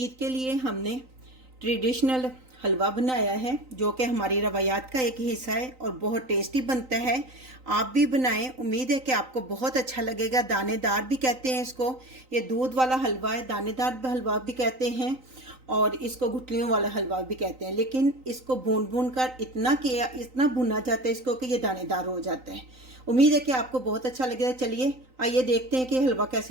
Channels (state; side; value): late; left; 3.9 ms